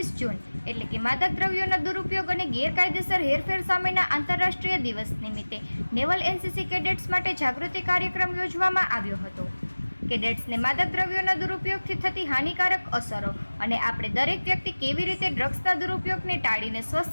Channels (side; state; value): both; inverted; correlation -1.00